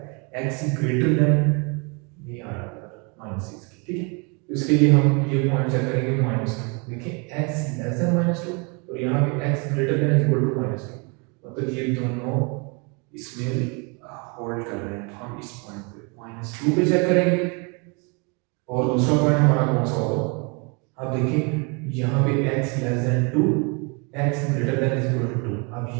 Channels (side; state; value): left; quieter; 32.6 dB